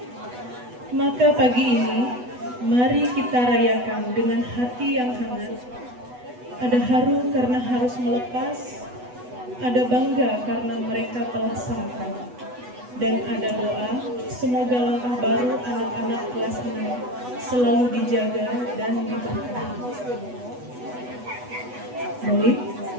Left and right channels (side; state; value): left; late; 8.1 ms